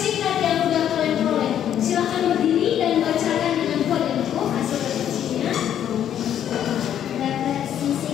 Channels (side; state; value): right; quieter; 10.1 dB